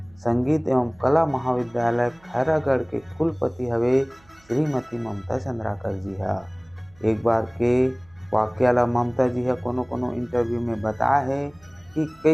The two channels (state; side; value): noise; right; hum, 29 dB below the sound